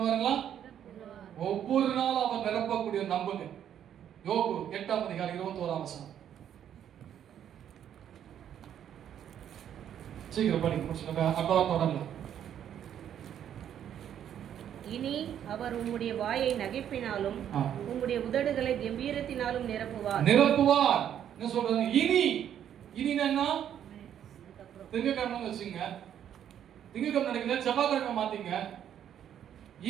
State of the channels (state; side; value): quieter; left; 9.8 dB